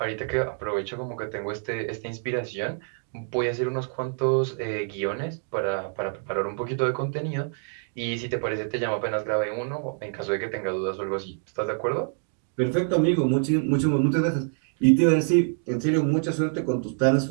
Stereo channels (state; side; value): silent; left; 61 dB below the other